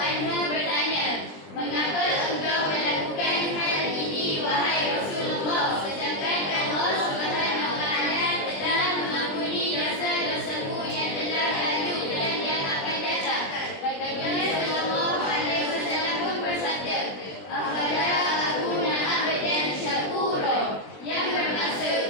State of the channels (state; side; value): late; right; 20 ms